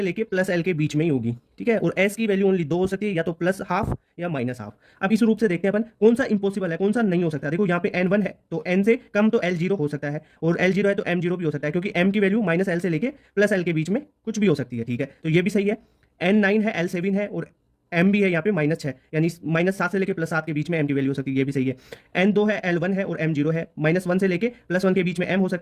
लेके प्लस एल के बीच में ही होगी, ठीक है। और एस की वैल्यू ओनली 2 हो सकती है, या तो प्लस हाफ या माइनस हाफ। अब इस रूप से देखते हैं अपन कौन सा इंपॉसिबल है कौन सा नहीं हो सकता। देखो यहाँ पे n1 है तो n से कम तो l0 हो सकता है, और l0 है तो m0 भी हो सकता है, क्योंकि m की वैल्यू माइनस एल से लेके प्लस एल के बीच में कुछ भी हो सकती है, ठीक है, तो ये भी सही है। n9 है, l7 है और m भी है यहाँ पे -6, यानी -7 से लेके +7 के बीच में m की वैल्यू हो सकती है, ये भी सही है। n2 है, l1 है और m0 है, -1 से लेके +1 के बीच में m हो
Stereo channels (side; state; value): both; identical; correlation 1.00